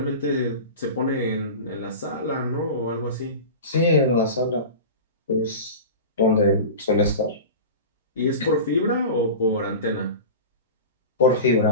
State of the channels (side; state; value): both; inverted; correlation -0.30